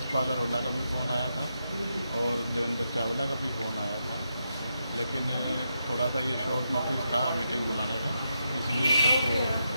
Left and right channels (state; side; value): inverted; both; correlation -0.84